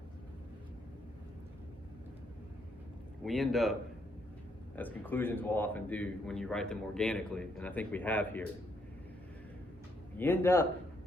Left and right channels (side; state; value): both; normal; correlation 0.74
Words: We end up, as conclusions will often do when you write them organically, and I think we have here, you end up